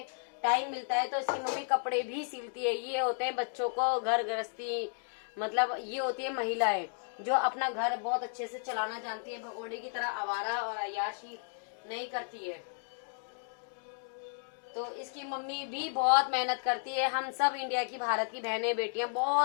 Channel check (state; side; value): silent; right; 55 dB below the other